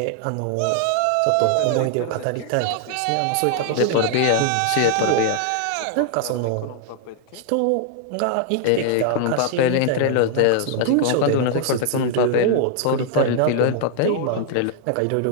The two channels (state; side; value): different; both; correlation 0.00